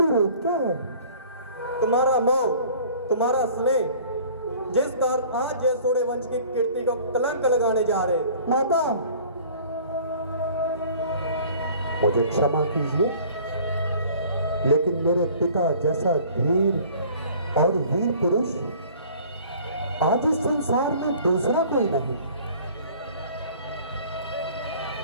रोग क्या है? तुम्हारा मोह, तुम्हारा स्नेह, जिस कारण आज ये सोड़े वंश की कीर्ति को कलंक लगाने जा रहे। माता, मुझे क्षमा कीजिए, लेकिन मेरे पिता जैसा धीर और वीर पुरुष आज इस संसार में दूसरा कोई नहीं।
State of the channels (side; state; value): both; inverted; correlation -0.49